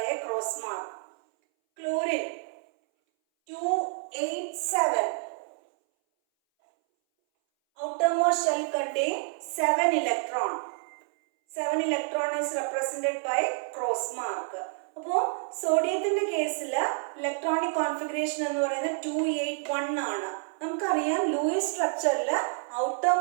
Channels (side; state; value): left; silent; 59 dB below the other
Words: a cross mark. Chlorine 287. Outermost shell contains 7 electrons. 7 electron is represented by cross mark. അപ്പോൾ സോഡിയത്തിന്റെ കേസിൽ electronic configuration എന്ന് പറയുന്നത് 281 ആണ്. നമുക്കറിയാം Luis സ്ട്രക്ചറിൽ